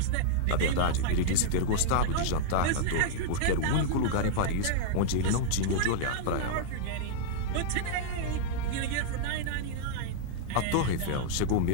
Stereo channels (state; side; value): different; both; correlation -0.02